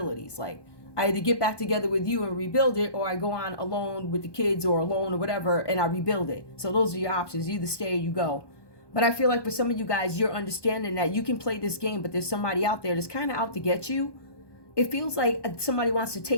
Like, I either get back together with you and rebuild it, or I go on alone with the kids or alone or whatever, and I rebuild it. So those are your options. You either stay or you go. But I feel like for some of you guys, you're understanding that you can play this game, but there's somebody out there that's kind of out to get you. It feels like somebody wants to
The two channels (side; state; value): right; late; 1.2 ms